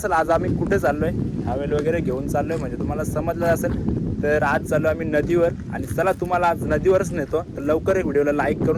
आज आम्ही कुठे चाललोय. हवेल वगैरे घेऊन चाललोय म्हणजे तुम्हाला समजलं असेल. तर आज चाललो आम्ही नदीवर आणि चला तुम्हाला आज नदीवरच नेतो. तर लवकर एक व्हिडिओला लाईक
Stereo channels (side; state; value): both; identical; correlation 1.00